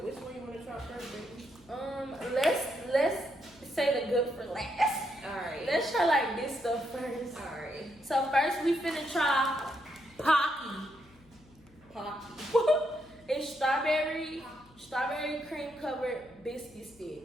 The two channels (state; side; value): noise; left; hum, 27 dB below the sound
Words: Which one you want to try first, baby? Let's say the good for last. All right. Let's try like this stuff first. All right. So first we finna try Pocky. It's strawberry cream covered biscuit